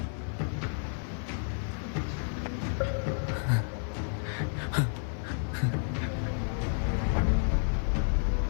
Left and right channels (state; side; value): silent; right; 57 dB below the other